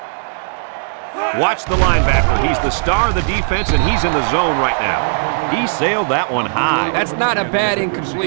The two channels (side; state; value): left; silent; digital silence